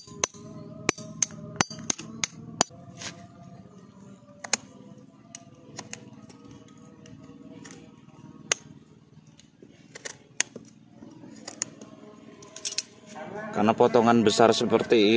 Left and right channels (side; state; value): both; identical; correlation 1.00